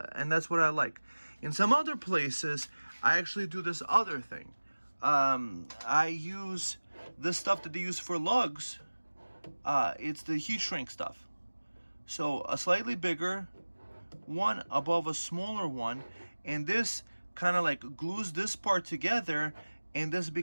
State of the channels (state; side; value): inverted; both; correlation -1.00